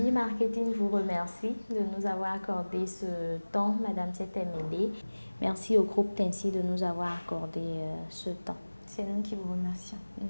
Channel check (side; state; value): both; inverted; correlation -1.00